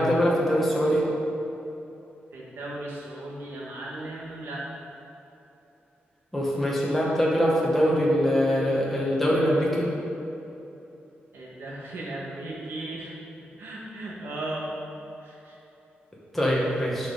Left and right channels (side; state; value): both; normal; correlation 0.85